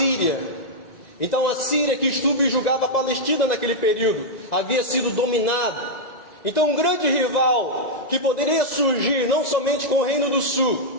Então a Síria, que subjugava a Palestina naquele período, havia sido dominada. Então um grande rival que poderia surgir não somente com o Reino do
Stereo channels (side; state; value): right; late; 2.0 ms